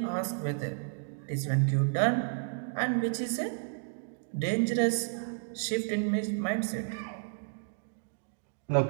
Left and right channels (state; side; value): silent; left; digital silence